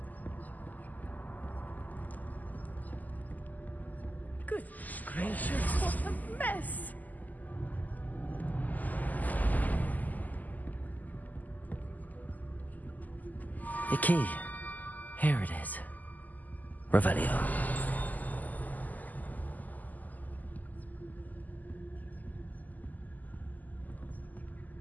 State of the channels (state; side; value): late; right; 0.081 ms